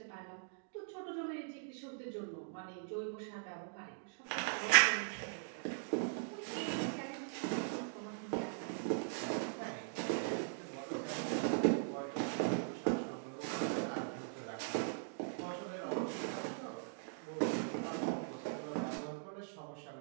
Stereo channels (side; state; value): left; silent; digital silence